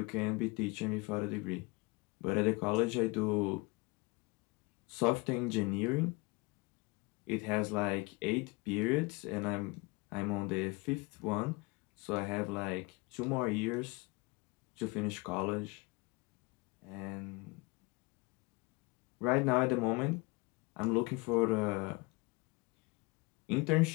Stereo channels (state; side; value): quieter; right; 26.5 dB